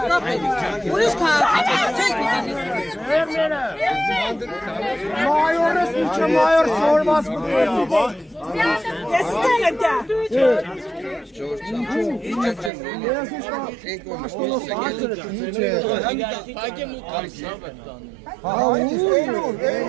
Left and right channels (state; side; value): drops out; left; at 12.7 s